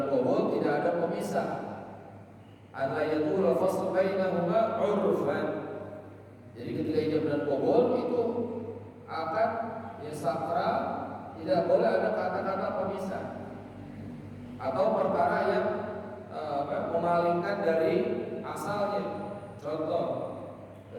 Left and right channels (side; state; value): both; identical; correlation 1.00